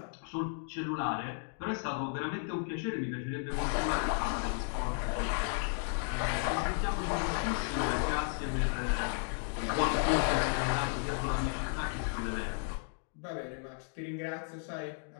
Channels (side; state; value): right; silent; 55 dB below the other